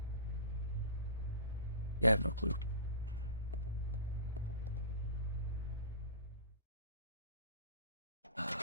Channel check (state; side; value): inverted; both; correlation -0.34